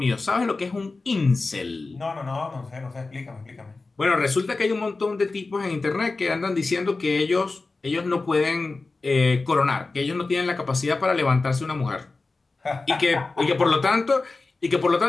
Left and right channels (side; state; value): right; quieter; 3.6 dB